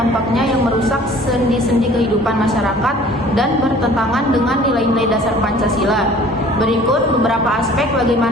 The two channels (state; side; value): normal; both; correlation 0.50